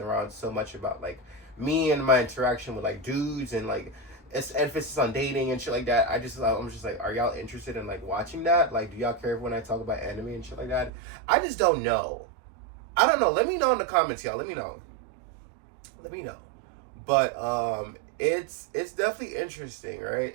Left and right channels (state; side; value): drops out; left; at 10.9 s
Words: around so much about like me and my interaction with like dudes and like it's emphasis on dating and shit like that. I'm just like, are y'all interested in like watching that? Like, do y'all care when I talk about anime and shit like that? I just don't know. I don't know. Let me know in the comments, y'all. Let me know. But it's definitely interesting,